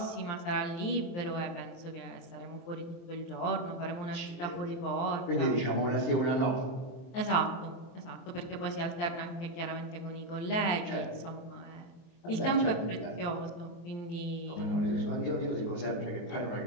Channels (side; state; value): right; late; 23 ms